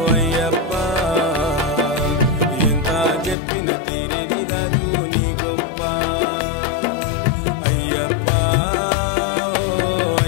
అయ్యప్ప ఎంత చెప్పిన తీరేది కాదు నీ గొప్ప అయ్యప్ప ఓ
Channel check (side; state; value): right; drops out; at 3.4 s